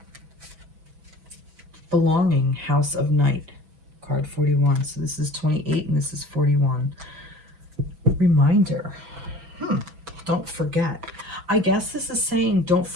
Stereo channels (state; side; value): late; left; 6.0 ms